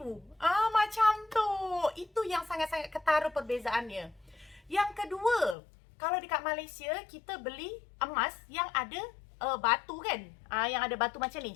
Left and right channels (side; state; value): right; drops out; at 5.6 s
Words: Macam tu. Itu yang sangat-sangat ketara perbezaannya. Yang kedua, kalau dekat Malaysia kita beli emas yang ada batu kan, yang ada batu macam